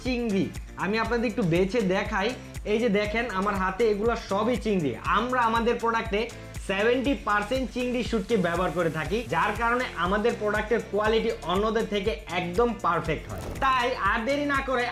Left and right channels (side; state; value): both; identical; correlation 1.00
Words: চিংড়ি। আমি আপনাদের একটু বেছে দেখাই। এই যে দেখেন আমার হাতে, এগুলো সবই চিংড়ি। আমরা আমাদের প্রোডাক্টে 70% চিংড়ি শুটকি ব্যবহার করে থাকি, যার কারণে আমাদের প্রোডাক্টের কোয়ালিটি অন্যদের থেকে একদম পারফেক্ট হয়। তাই আর দেরি না করে